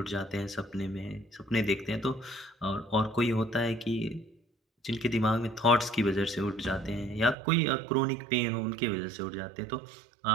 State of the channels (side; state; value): left; drops out; at 7.4 s